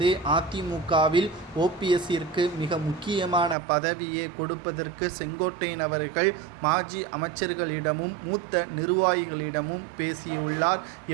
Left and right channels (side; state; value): left; drops out; at 3.6 s